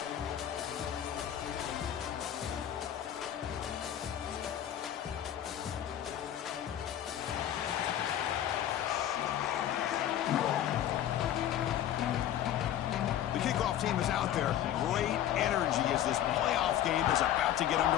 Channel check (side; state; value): right; quieter; 11.2 dB